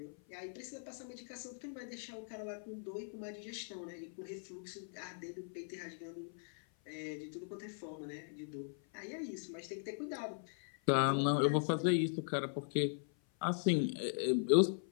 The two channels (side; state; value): right; silent; 51 dB below the other